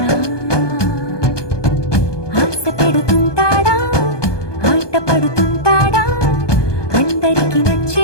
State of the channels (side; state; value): right; late; 1.2 ms